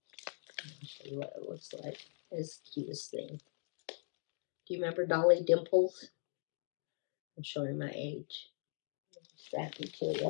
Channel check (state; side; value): silent; right; 51 dB below the other